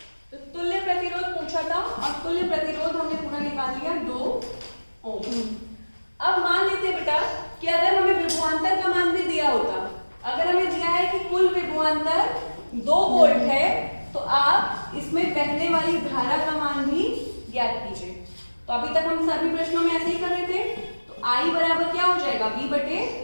तो तुल्य प्रतिरोध पूछा था और तुल्य प्रतिरोध हमने पूरा निकाल लिया 2 ओम। अब मान लेते हैं बेटा कि अगर हमें विभवांतर का मान भी दिया होता, अगर हमें दिया है कि कुल विभवांतर 2 वोल्ट है तो आप इसमें बहने वाली धारा का मान भी ज्ञात कीजिए। तो अभी तक हम सभी प्रश्नों में ऐसे ही कर रहे थे। तो I बराबर क्या हो जाएगा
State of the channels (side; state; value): both; inverted; correlation -1.00